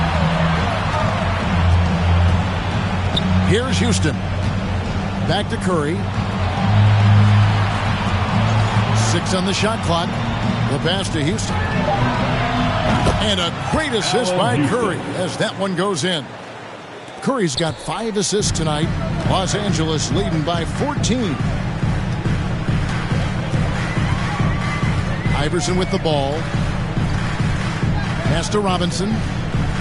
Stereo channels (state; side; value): identical; both; correlation 1.00